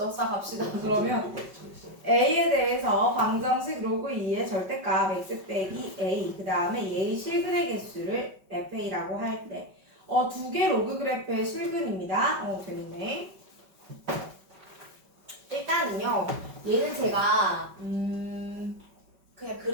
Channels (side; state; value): left; late; 5.3 ms